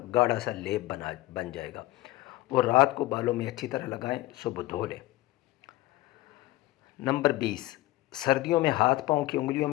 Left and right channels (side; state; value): right; quieter; 17.6 dB